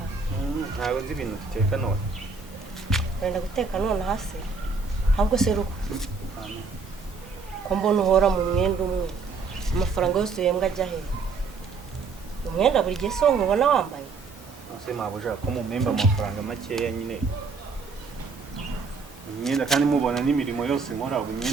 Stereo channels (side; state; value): left; quieter; 4.6 dB